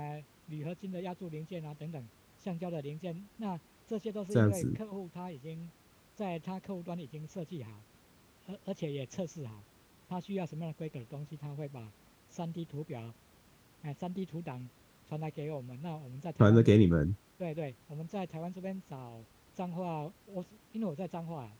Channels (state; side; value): identical; both; correlation 1.00